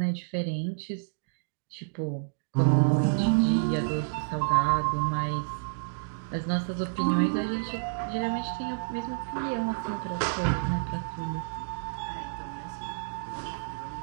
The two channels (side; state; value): left; silent; digital silence